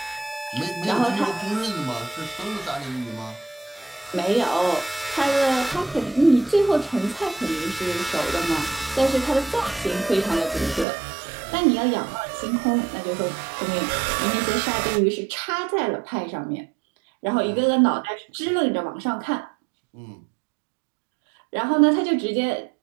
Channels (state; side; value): drops out; left; at 10.9 s